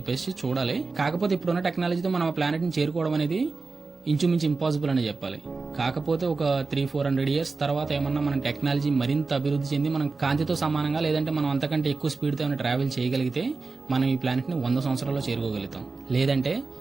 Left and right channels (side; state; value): left; quieter; 4.1 dB